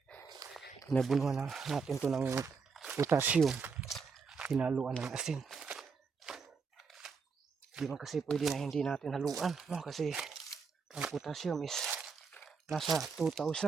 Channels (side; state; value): left; quieter; 5.3 dB